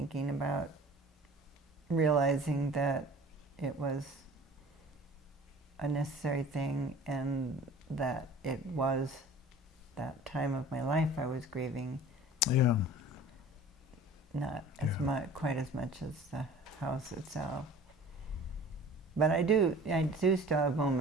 about realizing that it was a necessary thing, and that it was that time of my life I was grieving, Yeah, not as Yeah. much, quite as much as the house itself. But I do still have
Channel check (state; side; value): normal; both; correlation 0.44